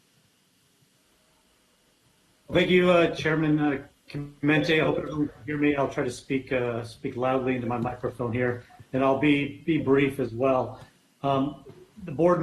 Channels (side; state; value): both; identical; correlation 1.00